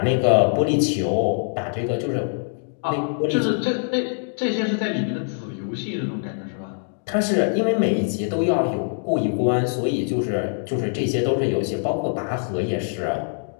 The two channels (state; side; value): silent; right; digital silence